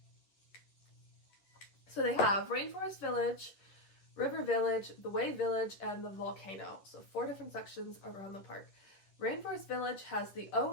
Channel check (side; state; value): right; late; 10 ms